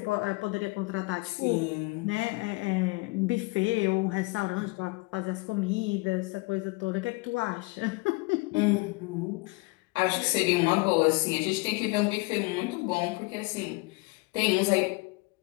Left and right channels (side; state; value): right; quieter; 25.9 dB